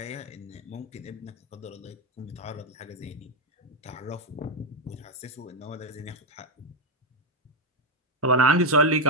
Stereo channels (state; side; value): normal; both; correlation 0.04